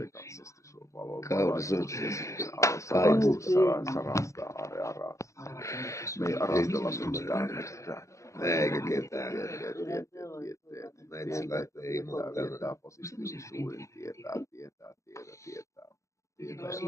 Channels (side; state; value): right; late; 0.15 ms